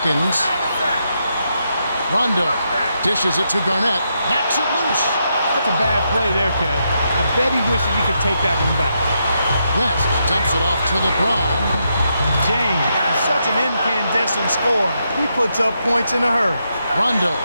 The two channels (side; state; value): both; inverted; correlation -0.81